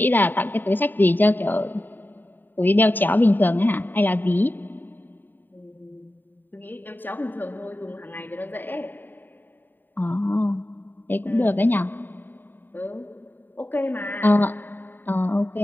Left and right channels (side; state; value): right; late; 0.091 ms